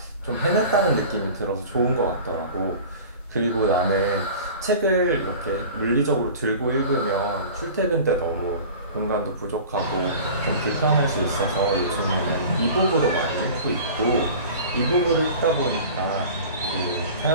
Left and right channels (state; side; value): inverted; both; correlation -0.39